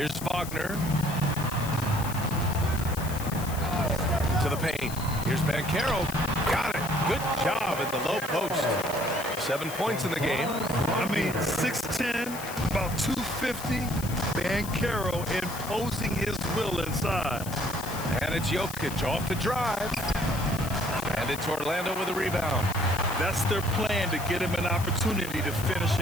Wagner. To the paint. Here's Banchero. Got it. Good job in the low post. 7 points in the game. I mean, 6'10", about 250. Banchero imposing his will inside. And it's Jokic off the drive. And it's Orlando with a rebound. That's their plan, to get him an opportunity to finish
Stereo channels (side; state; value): left; noise; hiss, 12 dB below the sound